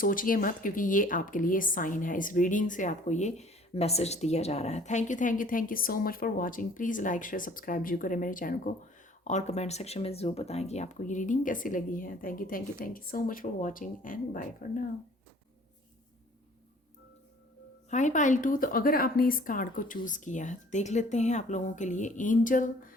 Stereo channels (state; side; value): normal; both; correlation 0.53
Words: मत, क्योंकि ये आपके लिए साइन है। इस रीडिंग से आपको ये मैसेज दिया जा रहा है। Thank you thank you thank you so much for watching. Please like share subscribe जरूर करें मेरे चैनल को, और कमेंट सेक्शन में ज़रूर बताएं कि आपको ये रीडिंग कैसी लगी है। Thank you so much for watching and bye for now. Hi pile 2, तो अगर आपने इस कार्ड को चूज़ किया है, देख लेते हैं आप लोगों के लिए एंजल